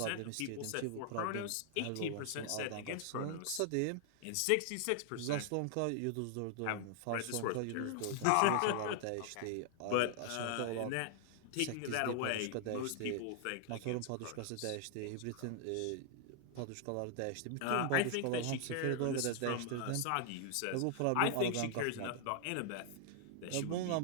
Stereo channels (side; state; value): both; different; correlation 0.00